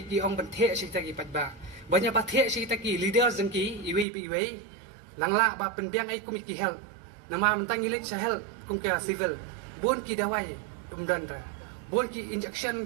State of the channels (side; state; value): left; drops out; at 4.0 s